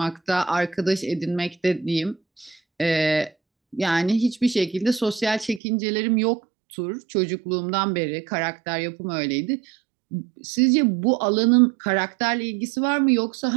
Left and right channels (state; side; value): drops out; left; at 5.6 s